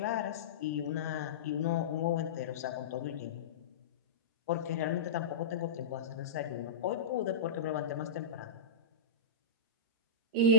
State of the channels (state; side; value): quieter; right; 3.8 dB